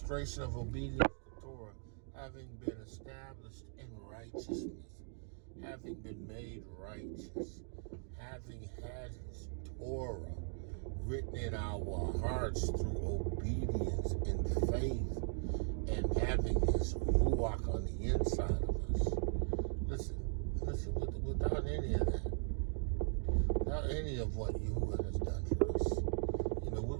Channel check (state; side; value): silent; left; 52 dB below the other